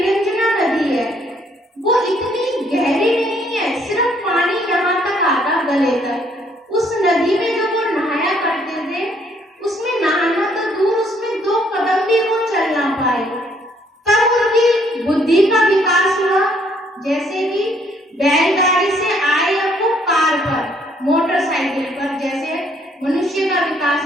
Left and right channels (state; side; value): normal; both; correlation 0.66